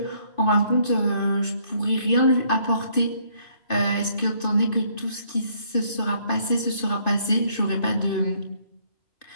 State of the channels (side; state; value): right; late; 2.5 ms